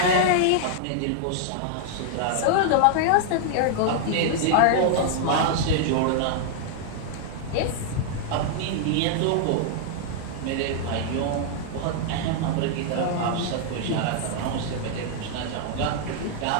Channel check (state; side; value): different; both; correlation -0.01